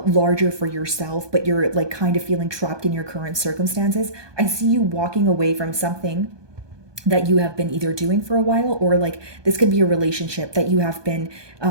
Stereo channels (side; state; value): left; late; 1.2 ms